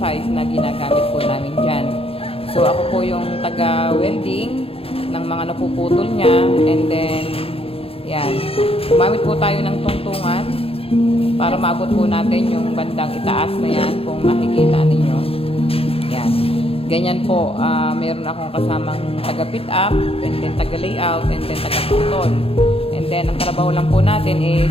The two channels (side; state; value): right; late; 0.27 ms